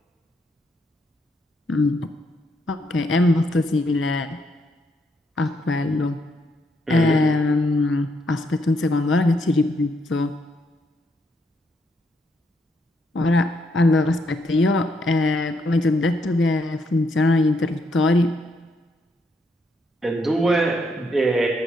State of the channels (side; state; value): both; normal; correlation 0.75